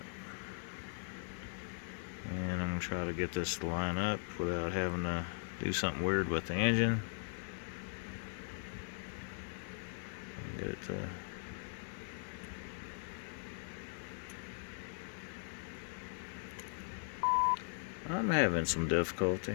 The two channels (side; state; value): right; silent; digital silence